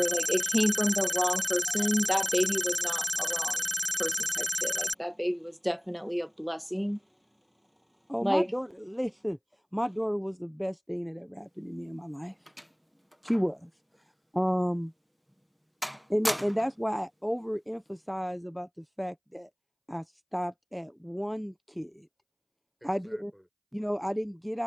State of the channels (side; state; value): both; identical; correlation 1.00